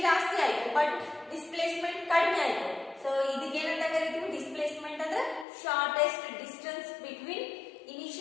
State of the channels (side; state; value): right; drops out; at 5.5 s